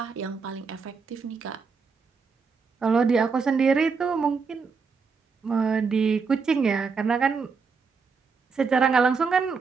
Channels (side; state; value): left; quieter; 5.1 dB